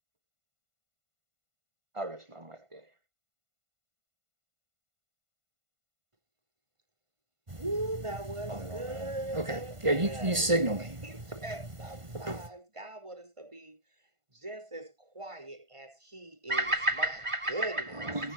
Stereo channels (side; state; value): left; late; 1.5 ms